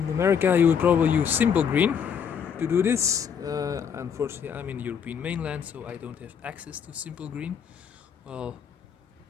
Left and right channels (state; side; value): quieter; right; 7.3 dB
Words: America you would probably use simple green to do this. Unfortunately I'm in the European mainland, so I don't have access to simple green. Well,